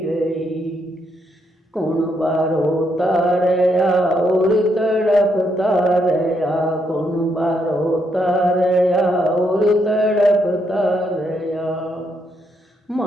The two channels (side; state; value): both; normal; correlation 0.77